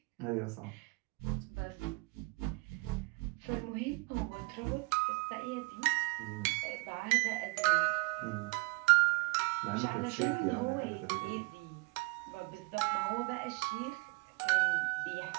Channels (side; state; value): left; quieter; 28.2 dB